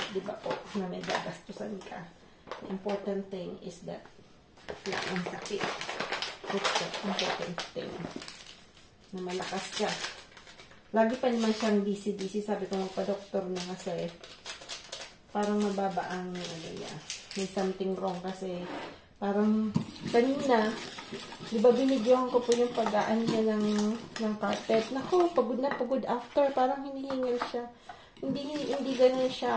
di ba po, na may gagastusan ka. The important thing is that wala ang sakit. That's the important thing. Na malakas ka. Lagi pa naman siyang busy. Sabi ko magpa-doktor na kasi parang mababa ang may something wrong kasi parang kanina, di ba binidyohan ko po yung pag-aan niya ng carpet. Naku, pagod na pagod after. Parang hinihingal siya. Hindi ganun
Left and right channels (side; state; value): both; identical; correlation 1.00